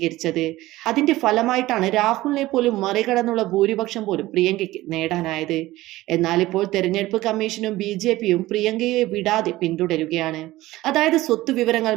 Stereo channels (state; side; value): quieter; left; 17.3 dB